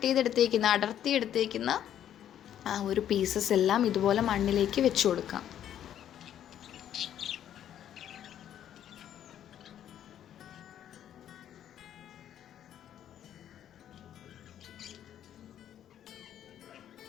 ചെയ്തെടുത്തേക്കുന്ന, അടർത്തി എടുത്തേക്കുന്ന ആ ഒരു പീസസ് എല്ലാം ഇതുപോലെ മണ്ണിലേക്ക് വെച്ച് കൊടുക്കാം.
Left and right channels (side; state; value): right; quieter; 10.5 dB